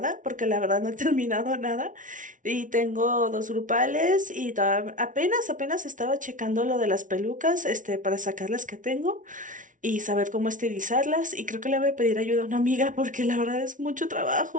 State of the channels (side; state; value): left; late; 0.38 ms